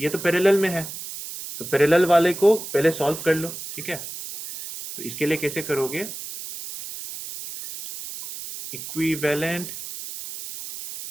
ये तो पैरेलल में है, तो पैरेलल वाले को पहले सॉल्व कर लो, ठीक है। तो इसके लिए कैसे करोगे, इक्विवेलेंट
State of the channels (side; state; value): right; noise; hiss, 10 dB below the sound